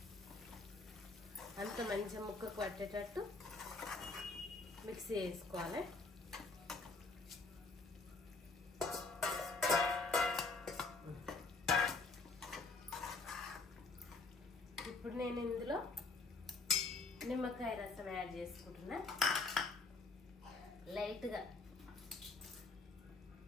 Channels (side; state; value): right; quieter; 3.7 dB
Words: అంత మంచిగా ముక్కకు పట్టేటట్టు మిక్సీ వేసుకోవాలి. ఇప్పుడు నేను ఇందులో నిమ్మకాయ రసం యాడ్ చేసుకుంటున్నా. లైట్గా